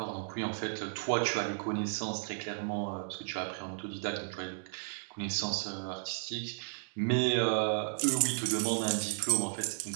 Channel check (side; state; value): left; silent; digital silence